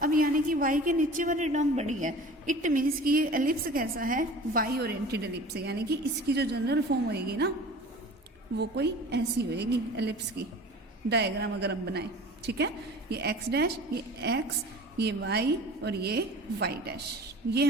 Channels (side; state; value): both; normal; correlation 0.41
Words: अब यानी कि y के नीचे वाली टर्म बड़ी है, इट मीन्स कि ये एलिप्स कैसा है, y ओरिएंटेड एलिप्स है। यानी कि इसकी जो जनरल फॉर्म होएगी ना, वो कोई ऐसी होएगी एलिप्स की डायग्राम अगर हम बनाए। ठीक है, ये x डैश, ये x, ये y और ये y डैश, ये